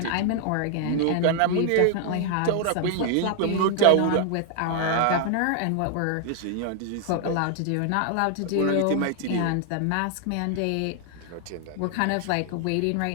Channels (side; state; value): both; different; correlation 0.00